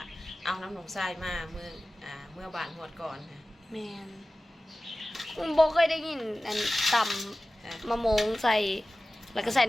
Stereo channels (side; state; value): both; normal; correlation 0.96